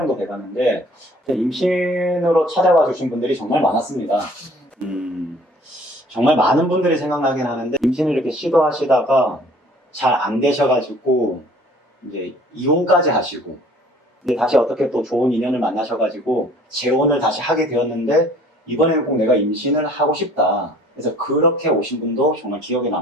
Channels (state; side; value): normal; both; correlation 0.53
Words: 돼가는데 임신으로 찾아와 주신 분들이 정말 많았습니다. 정말 많은 분들이 생각나긴 하는데 임신을 이렇게 시도하시다가 잘 안 되셔가지고 이제 이혼까지 하시고 이제 다시 어떻게 또 좋은 인연을 만나셔가지고 재혼을 다시 하게 되었는데 이번에는 꼭 내가 임신을 하고 싶다. 그래서 그렇게 오신 분도 정말 기억에